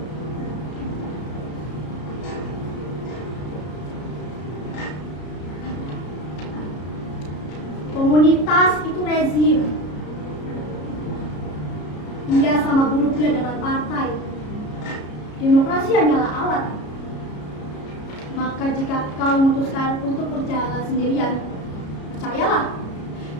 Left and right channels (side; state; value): right; late; 33 ms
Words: Komunitas itu rezim. Ia sama buruknya dengan partai. Demokrasi hanyalah alat. Maka jika kau memutuskan untuk berjalan sendirian, percayalah,